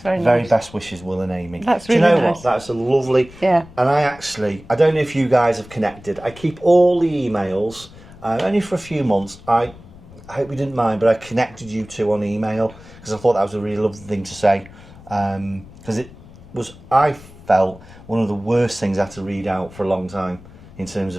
very Very nice. Best wishes, Will and Amy. That's Do you really know nice. what? That's a lovely... Yeah. And I don't know if you guys have connected. I keep all the emails, only for a few months. I hope you didn't mind, but I connected you two on email because I thought that was a really lovely thing to say. Because it was, I felt, one of the worst things I had to read out for a long time in terms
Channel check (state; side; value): noise; left; rumble, 20 dB below the sound